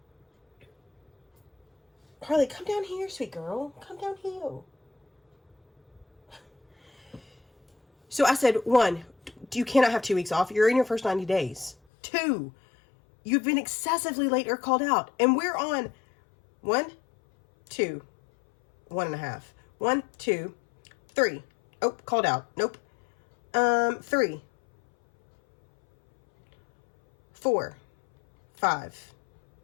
come down here, sweet girl. Come down here. So I said, 1, you cannot have 2 weeks off. You're in your first 90 days. 2, you've been excessively late or called out. And we're on 1, 2, 1.5. 1, 2, 3. Oh, called out. Nope. 3, 4, 5.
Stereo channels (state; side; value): drops out; right; at 11.8 s